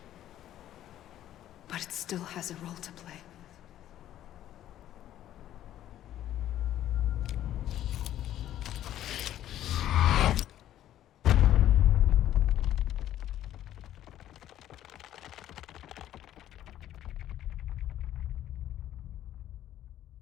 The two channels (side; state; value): right; quieter; 12.2 dB